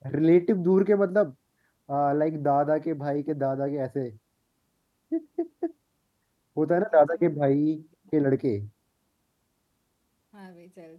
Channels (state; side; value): identical; both; correlation 1.00